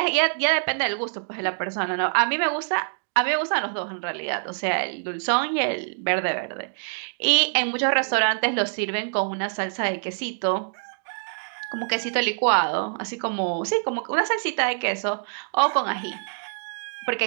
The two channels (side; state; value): left; silent; digital silence